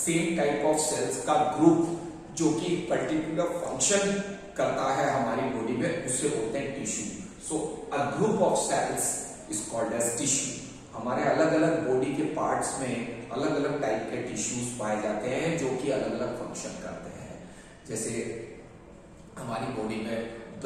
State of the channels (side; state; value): both; identical; correlation 1.00